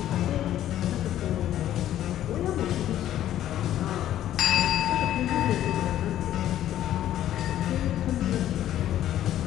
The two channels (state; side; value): quieter; right; 12.2 dB